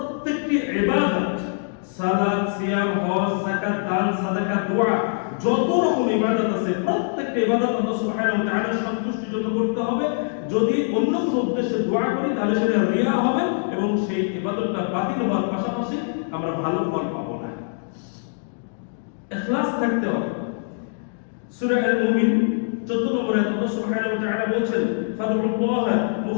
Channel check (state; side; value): silent; right; digital silence